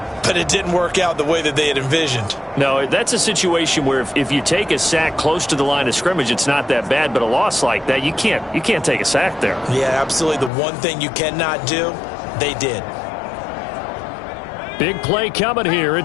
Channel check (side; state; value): right; drops out; at 10.5 s